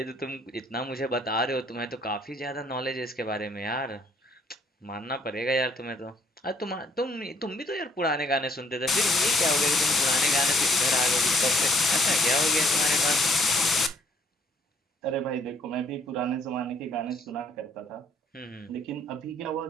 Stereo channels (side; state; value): both; normal; correlation 0.64